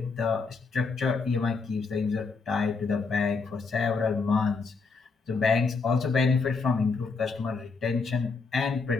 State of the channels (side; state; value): right; quieter; 4.6 dB